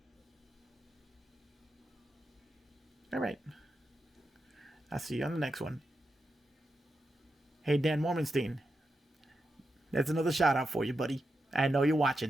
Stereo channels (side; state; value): both; normal; correlation 0.87